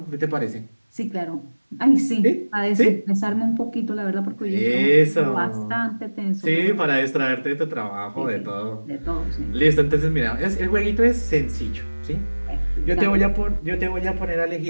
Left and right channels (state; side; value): inverted; both; correlation -1.00